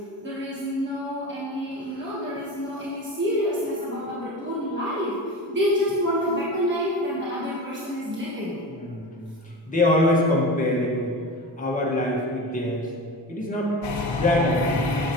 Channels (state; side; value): normal; both; correlation 0.29